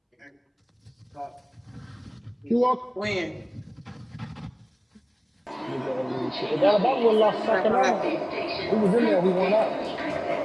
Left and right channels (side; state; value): both; identical; correlation 1.00